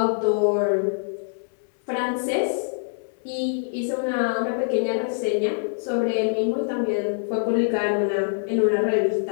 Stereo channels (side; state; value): right; silent; digital silence